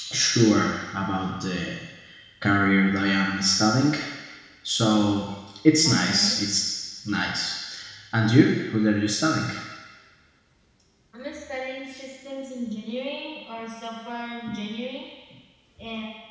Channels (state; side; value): identical; both; correlation 1.00